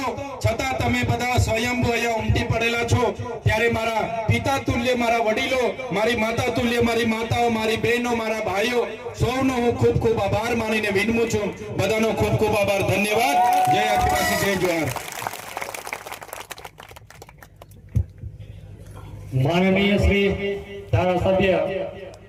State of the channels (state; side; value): identical; both; correlation 1.00